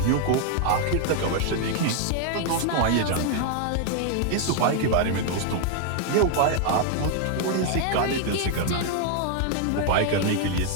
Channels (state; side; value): different; both; correlation 0.00